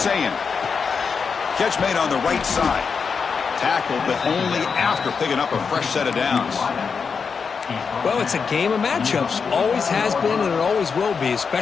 Catch made on the right side. Tackled, but only after picking up a fresh set of downs. Well, it's a game of matchups. Always has been and it always will be,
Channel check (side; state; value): right; quieter; 5.7 dB